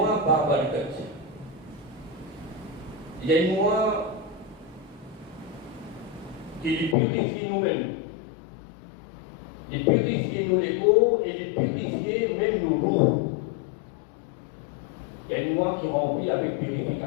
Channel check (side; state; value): right; drops out; at 7.0 s